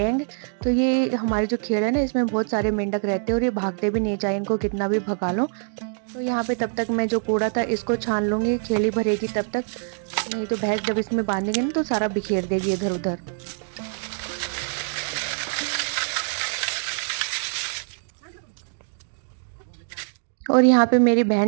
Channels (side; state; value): left; silent; digital silence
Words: तो ये हमारे जो खेड़ है ना, इसमें बहुत सारे मेंढक रहते हैं और ये भागते भी नहीं, चाहे इनको कितना भी भगा लो। तो यहाँ पे तब तक मैं जो कूड़ा था इसको छान लूँगी, खेड़ी भरेगी तब तक, नहीं तो भैंस जब इसमें बांधेंगे ना तो सारा बिखेर देगी इधर उधर। और यहाँ पे मेरी